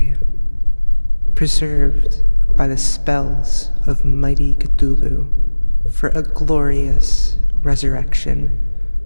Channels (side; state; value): both; inverted; correlation -1.00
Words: preserved by the spells of mighty Cthulhu for a glorious resurrection,